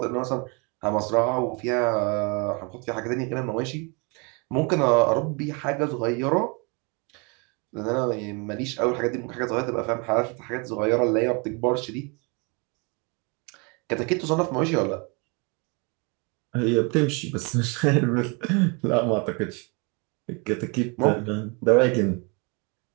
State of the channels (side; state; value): left; quieter; 31.7 dB